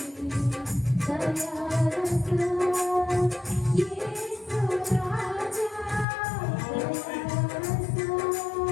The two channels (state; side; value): drops out; right; at 6.1 s